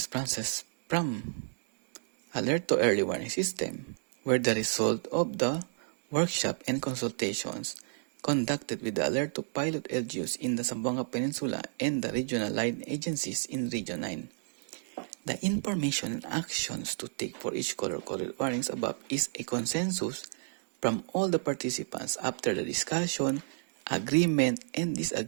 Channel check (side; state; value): left; silent; digital silence